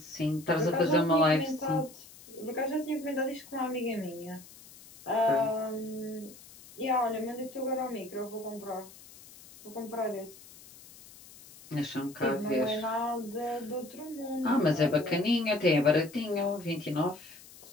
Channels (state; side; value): noise; left; hiss, 20 dB below the sound